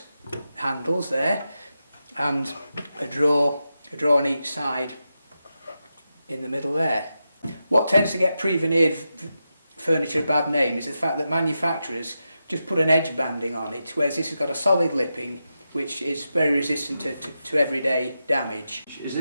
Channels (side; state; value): both; inverted; correlation -0.89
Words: handles there, and a drawer on each side in the middle there. What tends to get pre-veneered furniture a bad name is the fact that manufacturers just put an edge banding on it, whereas this has got a solid lipping which is very resistant to everyday damage. Is